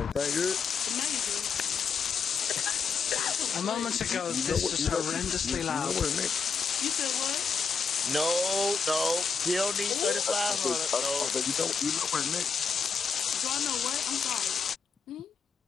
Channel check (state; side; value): quieter; right; 5.5 dB